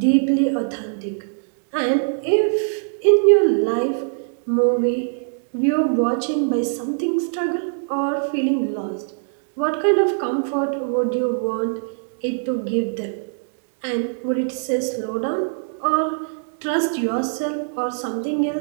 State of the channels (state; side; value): silent; left; digital silence